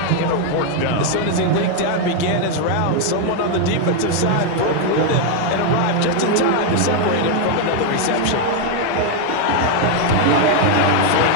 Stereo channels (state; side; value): different; both; correlation 0.01